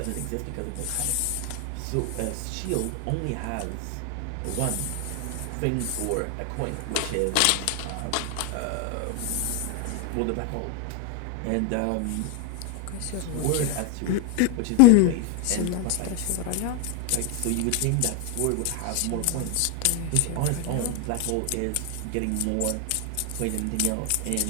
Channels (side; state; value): both; different; correlation 0.01